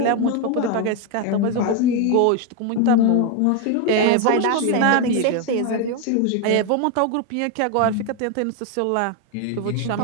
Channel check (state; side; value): different; both; correlation 0.01